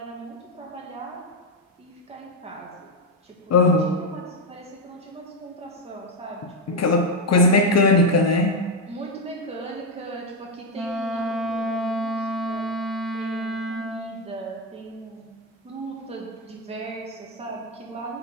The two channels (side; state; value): both; normal; correlation 0.04